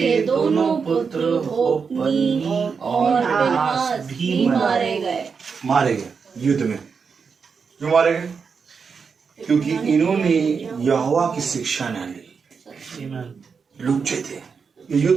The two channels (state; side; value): quieter; left; 5.7 dB